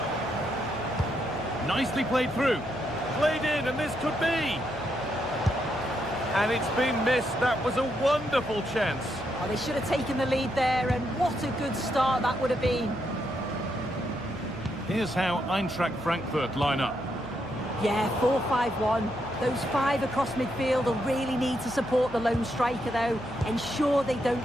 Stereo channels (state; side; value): noise; left; hum, 18 dB below the sound